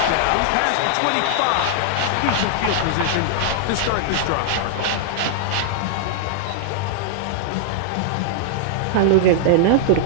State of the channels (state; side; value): different; both; correlation -0.01